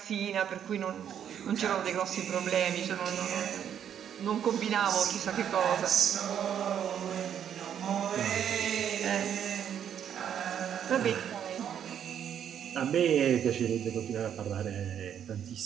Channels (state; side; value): quieter; left; 9.1 dB